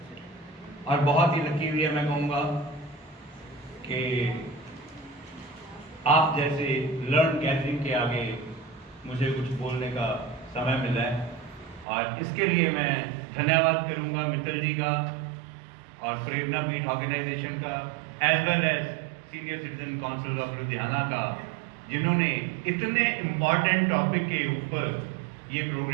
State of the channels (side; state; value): left; drops out; at 11.9 s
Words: और बहुत ही लकी हुई है, मैं कहूँगा कि आप जैसे लर्न गैदरिंग के आगे मुझे कुछ बोलने का समय मिला है और इसके लिए मैं धन्यवाद करूंगा मित्तल जी का और प्रेरणा पीठ ऑर्गेनाइजेशन का as well as senior citizen council of Ludhiana का, जिन्होंने इतने इम्पॉर्टेंट टॉपिक के ऊपर ये